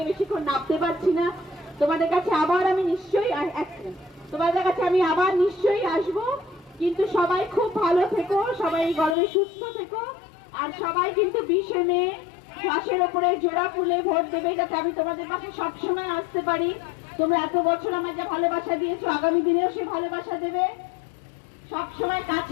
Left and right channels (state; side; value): drops out; right; at 9.2 s